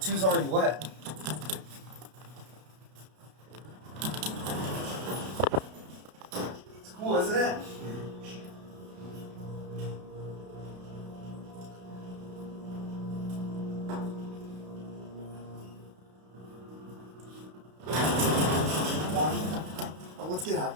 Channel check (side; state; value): left; late; 32 ms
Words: already wet. It's cool, isn't it? Oh, let's get out